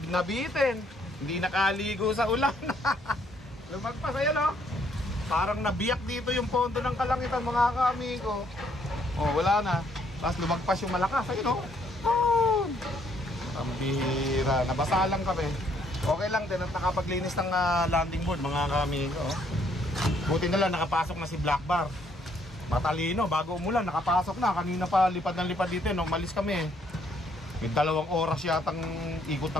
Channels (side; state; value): both; normal; correlation 0.68